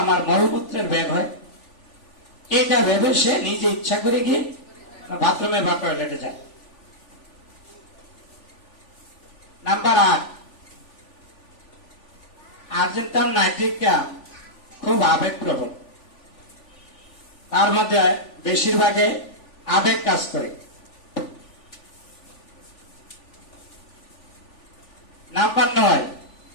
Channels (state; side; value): late; right; 3.4 ms